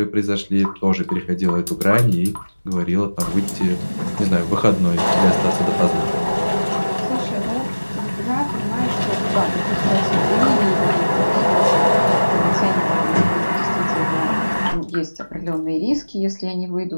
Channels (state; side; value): inverted; both; correlation -1.00